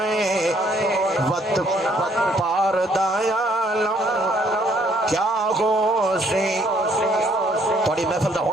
ہے وط پار دیالم کیا غوثی تھوڑی محفل دا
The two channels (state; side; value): normal; both; correlation 0.66